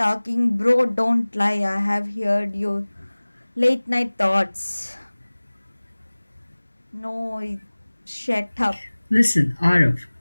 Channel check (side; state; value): both; inverted; correlation -1.00